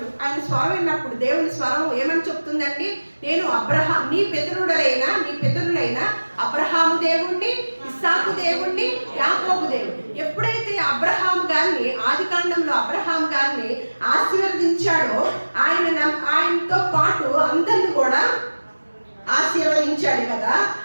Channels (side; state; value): both; inverted; correlation -1.00